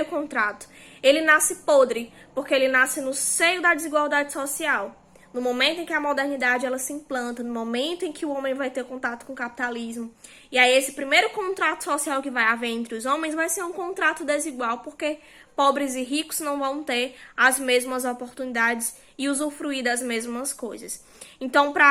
contrato, ele nasce podre, porque ele nasce no seio da desigualdade social. No momento em que a modernidade ela se implanta, no momento em que o homem vai ter contato com o capitalismo. E aí esse primeiro contrato social que vai haver entre os homens vai ser um contrato desigual, porque pobres e ricos não vão ter as mesmas oportunidades e usufruir das mesmas coisas. Então,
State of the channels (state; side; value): identical; both; correlation 1.00